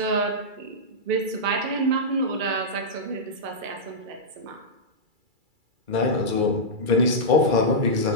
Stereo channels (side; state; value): left; late; 2.3 ms